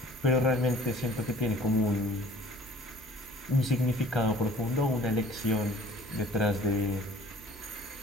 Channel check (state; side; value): normal; both; correlation 0.51